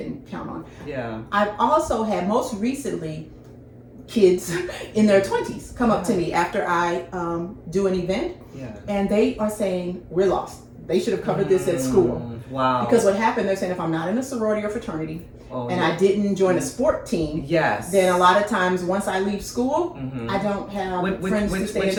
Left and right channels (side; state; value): both; identical; correlation 1.00